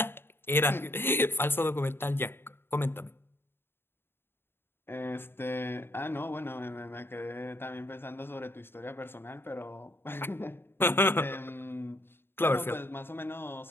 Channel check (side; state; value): right; late; 0.11 ms